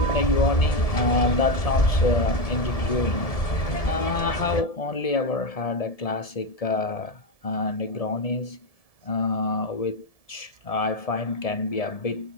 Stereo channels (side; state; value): right; late; 1.7 ms